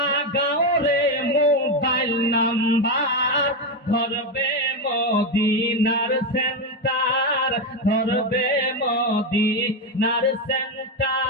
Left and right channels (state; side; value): normal; both; correlation 0.10